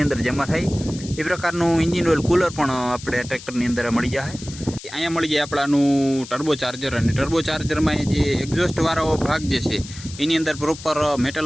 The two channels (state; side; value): noise; left; hiss, 15 dB below the sound